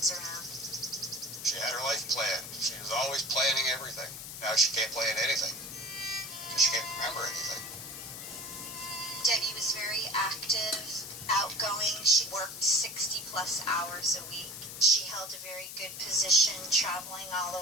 around. She had her life planned. She was always planning everything. Now she can't plan anything because she can't remember anything. Debbie was very active, outgoing. She worked 60 plus hours a week. She held a very good position, traveling all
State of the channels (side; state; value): left; noise; hiss, 10 dB below the sound